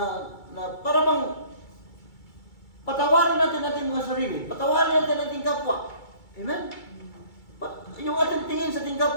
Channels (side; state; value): right; late; 2.3 ms